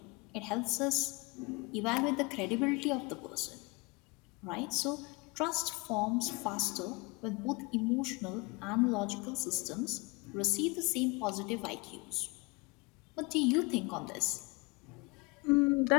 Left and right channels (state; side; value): quieter; right; 26.9 dB